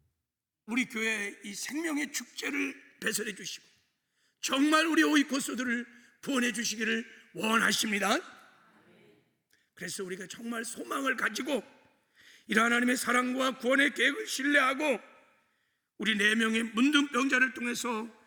우리 교회의 이 생명의 축제를 배설해 주시고 정말 우리 오이코스들을 구원해 주시기를 원하십니다. 그래서 우리가 정말 소망을 가지고 이러한 하나님의 사랑과 구원의 계획을 신뢰하고 우리 4명의 문둥병자를 통해서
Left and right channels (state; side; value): identical; both; correlation 1.00